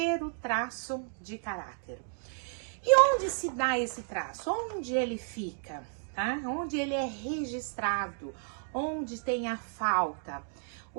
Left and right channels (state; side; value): silent; left; 56 dB below the other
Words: traço de caráter. E onde se dá esse traço? Onde ele fica? Tá? Onde ele é registrado? Onde tem a falta?